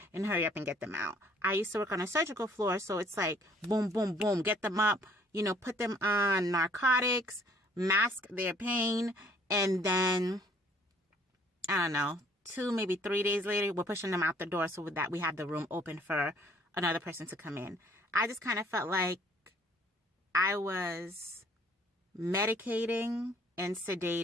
and hurry up and get them out. I used to work on a surgical floor, so it's like, boom, boom, boom, get them up, put them on narcotics, mask their pain, and then, I don't know, 2, maybe 3 days later, we're pushing them out the door so that we have the room open for another person to come in. I just kind of felt like I was medicating and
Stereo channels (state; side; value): normal; both; correlation 0.59